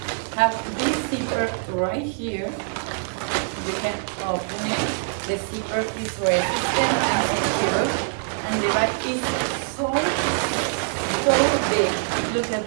have this zipper right here. You can open it. The zipper is resistant and secure, and the bag is so big. Look at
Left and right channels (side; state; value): left; silent; digital silence